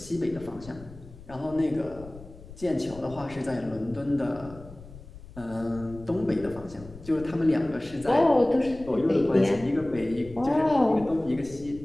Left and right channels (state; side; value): noise; left; rumble, 18 dB below the sound